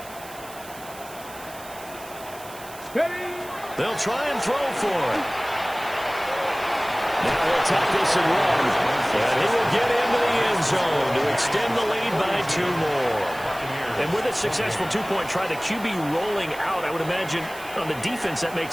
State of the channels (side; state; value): right; noise; hiss, 18 dB below the sound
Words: They'll try and throw for it. Now he'll take this and run. And he will get into the end zone to extend the lead by 2 more. And with a successful 2-point try, the QB rolling out, I would imagine on the defense that